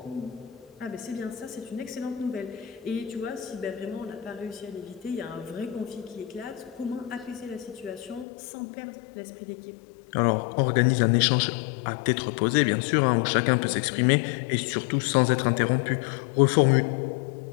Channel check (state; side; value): drops out; right; at 8.2 s